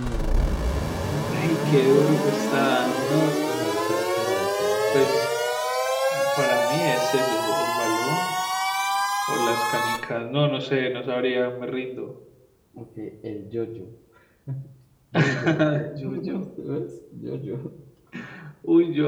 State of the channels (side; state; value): both; identical; correlation 1.00